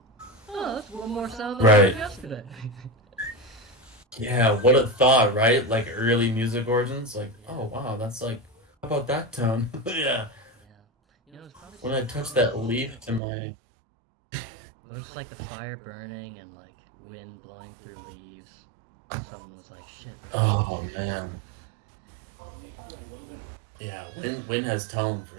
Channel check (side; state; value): left; drops out; at 13.2 s